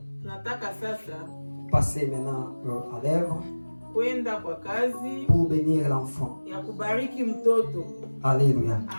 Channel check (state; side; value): inverted; both; correlation -1.00